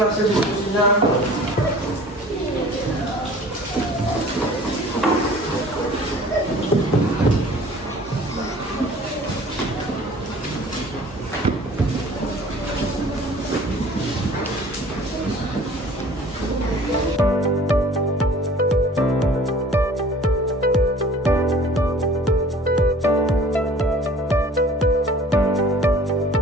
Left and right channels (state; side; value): normal; both; correlation 0.48